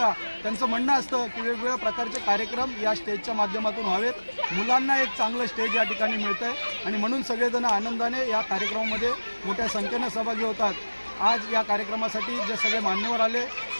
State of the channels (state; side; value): inverted; both; correlation -1.00